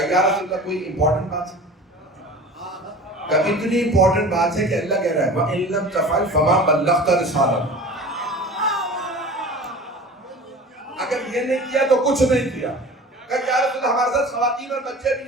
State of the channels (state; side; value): normal; both; correlation 0.38